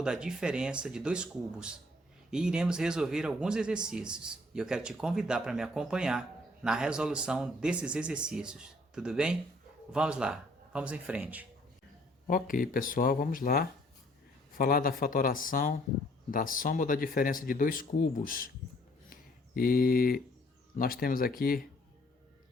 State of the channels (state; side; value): normal; both; correlation 0.62